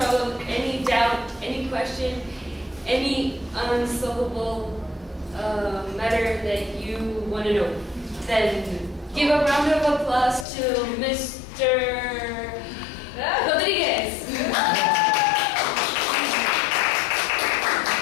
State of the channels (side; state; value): right; drops out; at 10.5 s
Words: any doubt, any question, any unsolvable matter that you want to know. Then give a round of applause to Mr. Rodriguez.